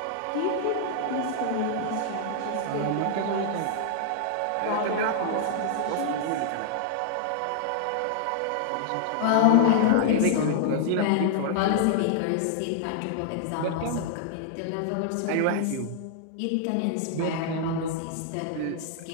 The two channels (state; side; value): different; both; correlation -0.01